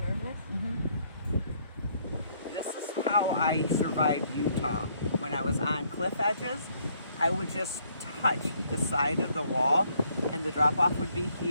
This is how I survived Utah. When I was on cliff edges, I would just touch the side of the wall and the drop off would be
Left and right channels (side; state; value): both; inverted; correlation -0.67